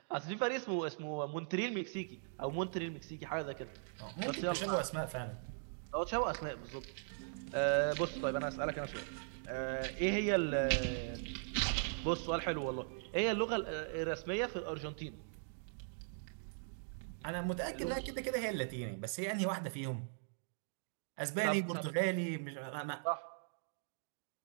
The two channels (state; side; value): silent; left; digital silence